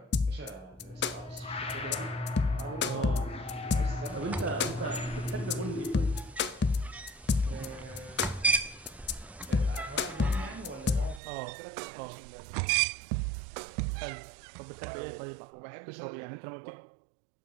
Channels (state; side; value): drops out; left; at 11.2 s